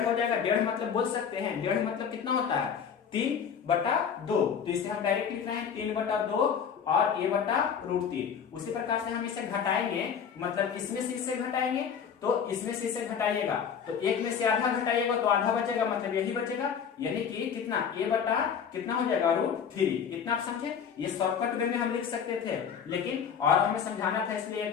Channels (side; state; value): right; quieter; 7.2 dB